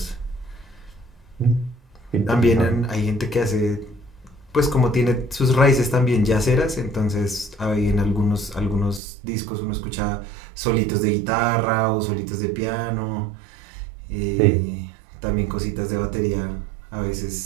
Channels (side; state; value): left; drops out; at 9.0 s